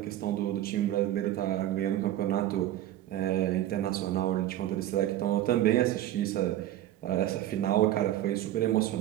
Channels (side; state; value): left; quieter; 13.2 dB